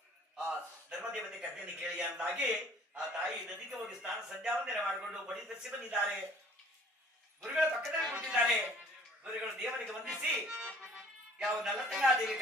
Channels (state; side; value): normal; both; correlation 0.53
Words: ಆ ಧರ್ಮದೇವತೆ ಕಥೆಯನ್ನು ಕೇಳಿ ಅಂದಾಗಿ ಆ ತಾಯಿ ನದಿಗೆ ಹೋಗಿ ಸ್ನಾನ ಸಂಧ್ಯಾವಂದನೆ ಮಾಡಿಕೊಂಡು ಮಡಿ ಧರಿಸಿ ಬಂದಿದ್ದಾರೆ. ಗುರುಗಳ ಪಕ್ಕದಲ್ಲಿ ಕೂತಿದ್ದಾರೆ. ಗುರುಗಳು ದೇವರಿಗೆ ವಂದಿಸಿ ಯಾವ ನಲ್ಲತಂಗಾದೇವಿ